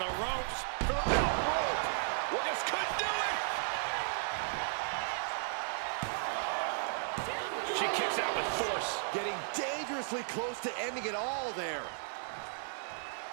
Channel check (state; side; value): silent; left; digital silence